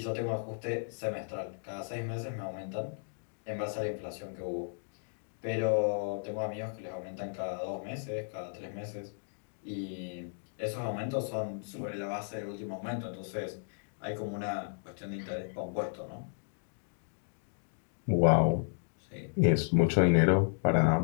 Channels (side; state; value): right; silent; digital silence